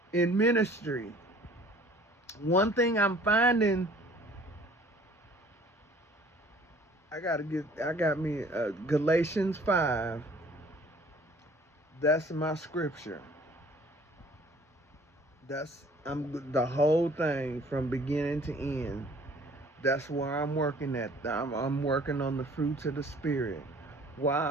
in ministry. One thing I'm finding, I got me Galatians 5. That's my scripture. I'm the whole thing from beginning to end. That's where I'm working at. I'm working on the fruits of the Spirit. While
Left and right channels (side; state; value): both; normal; correlation 0.53